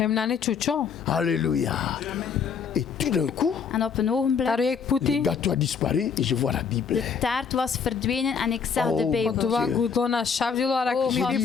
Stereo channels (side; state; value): right; quieter; 6.4 dB